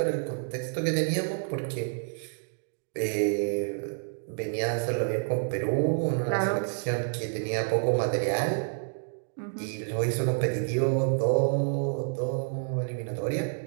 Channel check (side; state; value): left; silent; digital silence